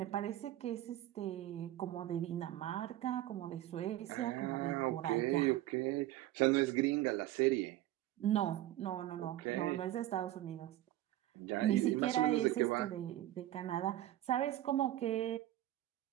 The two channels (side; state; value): left; quieter; 14.3 dB